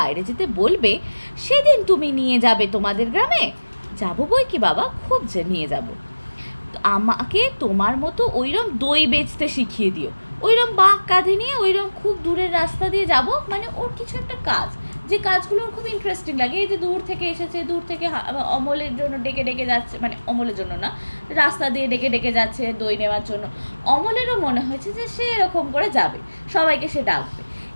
যেতে বলবে সেদিন তুমি নিয়ে যাবে তোমাদের গ্রামে। যাবো বই কি বাবা, খুব যে নিয়ে যাব। আমাকে তোমার মতো ওইরকম দই বেচতে শিখিয়ে দিও, ওইরকম বাঁক কাঁধে নিয়ে ওইরকম খুব দূরের রাস্তা দিয়ে যাব, মানে ওর কিছু একটা কাজ, যে কাজগুলো ওর খুব ইন্টারেস্টিং লাগে। এই যে দূর থেকে এসেছে, দূর থেকে অমলের জন্য ডেকে ডেকে যাচ্ছে, মানে অমলের জন্য না, রাস্তা দিয়ে ডেকে ডেকে যাচ্ছে দই নেওয়ার জন্য। অমলেরও মনে হয়েছে যে সে এরকম করে যাবে, সবাইকে সে ডাকবে।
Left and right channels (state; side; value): inverted; both; correlation -1.00